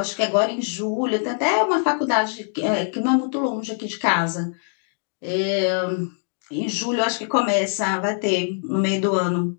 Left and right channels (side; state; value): right; silent; 63 dB below the other